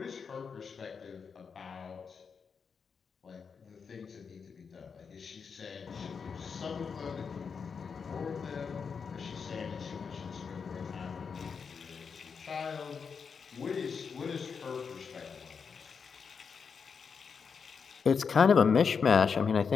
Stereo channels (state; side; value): quieter; right; 5.9 dB